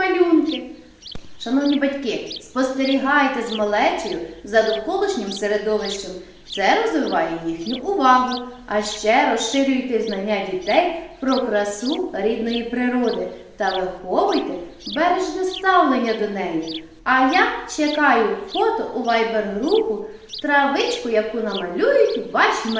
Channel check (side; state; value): both; identical; correlation 1.00